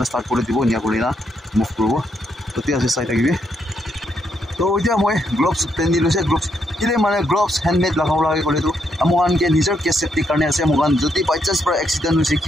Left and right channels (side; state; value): both; normal; correlation 0.77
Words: ষ্টাৰ্ট কৰি দিব নিয়া কৰি না মুভ কৰিব তেতিয়া আছে চাই থাকিবি তো এতিয়া মই গ্লভছ পিন্ধি লৈছে গ্লভছ কিলে মানে গ্লভছ হেণ্ডমেড লগাব লাগে ক'লেতো মোকানকে নিজৰ কেছ চেফটিৰ কাৰণে আছে মোকান যদি বাই চান্স পৰা এক্সিডেণ্ট হৈছে